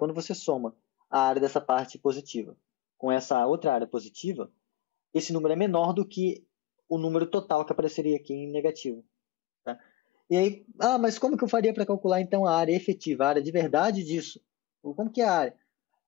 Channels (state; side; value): quieter; right; 15.8 dB